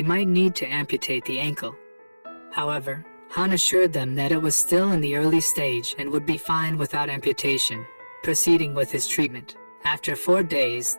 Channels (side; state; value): both; inverted; correlation -1.00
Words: might need to amputate the ankle. However, Han assured them that it was still in the early stage and would be fine without amputation, proceeding with his treatment. After 4 days,